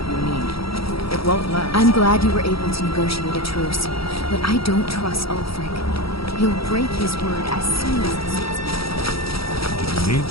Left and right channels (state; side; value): late; right; 0.75 ms